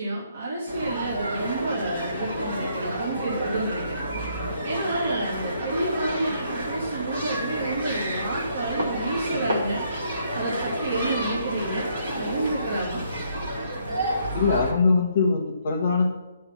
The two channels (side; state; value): both; inverted; correlation -0.70